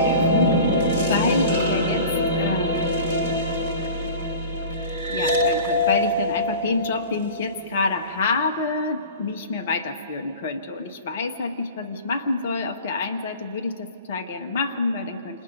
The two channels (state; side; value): inverted; both; correlation -0.39